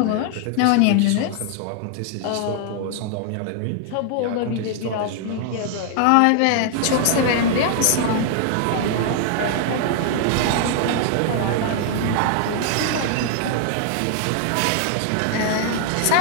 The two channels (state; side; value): different; both; correlation 0.00